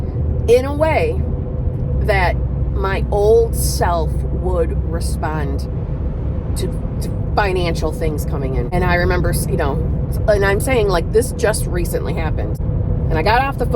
in a way that my old self would respond to financial things coming in. And I remember, you know, and I'm saying like this just recently happened. And I got off the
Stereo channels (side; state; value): both; identical; correlation 1.00